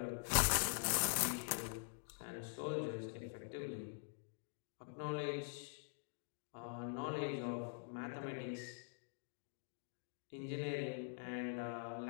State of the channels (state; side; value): silent; right; digital silence